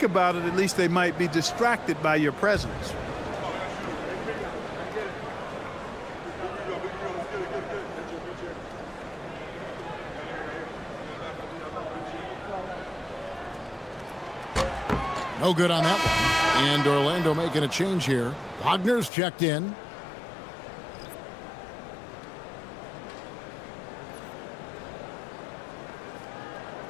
about it, at least they might be distracted by your presence. No good on that one. And Orlando making a change here. Wagner's checked in.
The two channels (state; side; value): drops out; right; at 19.1 s